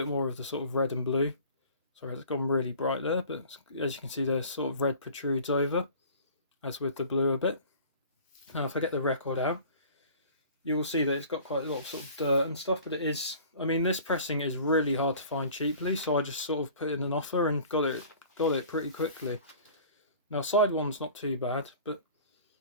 more of the sort of red and blue. Sorry, it's gone really bright there, but as you can see, there's sort of red protrudes over, as with the blue a bit. Now, if I get the record out, you will see that it's got quite a lot of sort of dirt and stuff, but it is, I mean, this pressing is really hard to find cheaply, so I just sort of put in an offer and got it pretty quickly. Now, side one's not too bad, but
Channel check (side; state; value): both; inverted; correlation -0.46